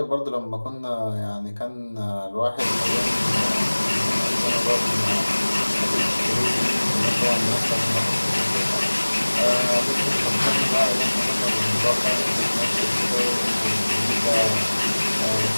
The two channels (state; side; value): inverted; both; correlation -1.00